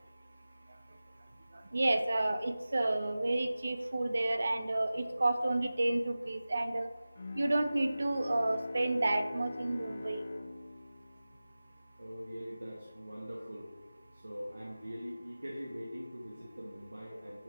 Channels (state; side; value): inverted; both; correlation -0.97